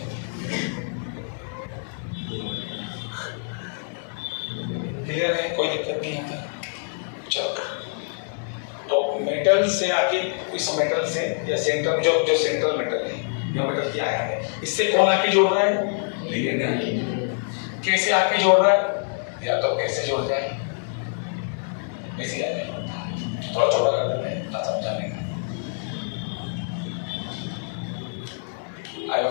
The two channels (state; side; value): silent; right; 61 dB below the other